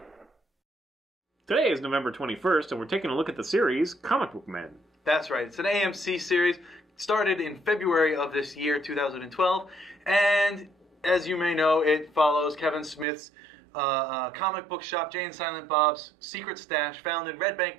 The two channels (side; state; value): left; drops out; at 13.1 s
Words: Today is November 21st, and we're taking a look at the series Comic Book Men. That's right. It's an AMC series. Started in February of this year, 2012. And as you may know, it follows Kevin Smith's comic book shop, Jay and Silent Bob's Secret Stash, found in Red Bank,